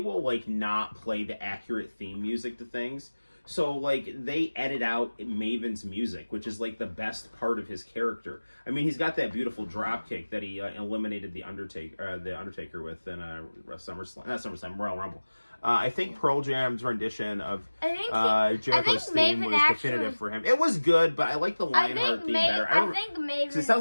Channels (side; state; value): both; inverted; correlation -1.00